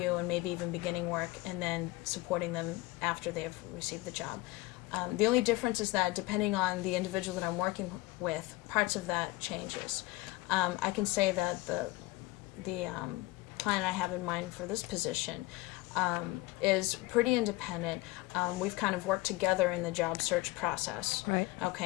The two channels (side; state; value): right; quieter; 19.9 dB